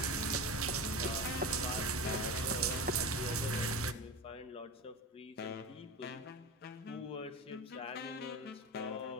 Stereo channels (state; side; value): normal; both; correlation 0.27